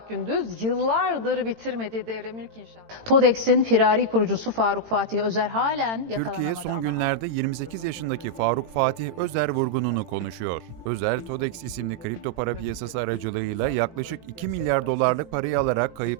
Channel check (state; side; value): late; left; 18 ms